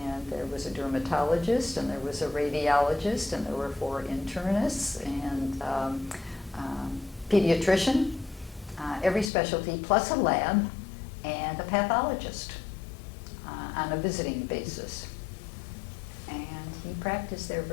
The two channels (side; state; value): right; drops out; at 9.3 s